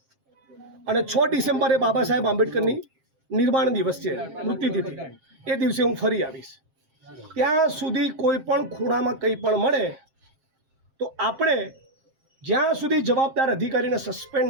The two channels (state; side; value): late; left; 7.5 ms